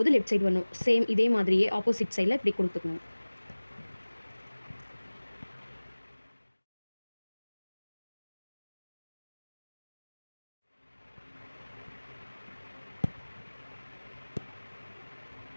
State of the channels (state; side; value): inverted; both; correlation -1.00